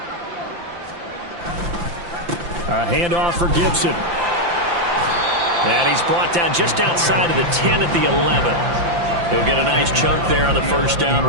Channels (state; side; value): late; left; 5.8 ms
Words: A handoff for Gibson. And he's brought down just outside of the 10 at the 11. He'll get a nice chunk there on the first down